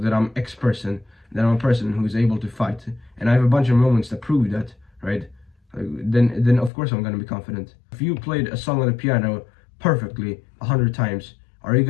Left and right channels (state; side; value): drops out; right; at 6.7 s